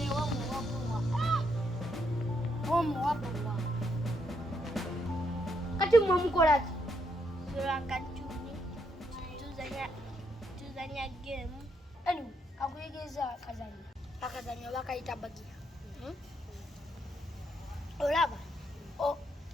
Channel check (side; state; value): both; normal; correlation 0.76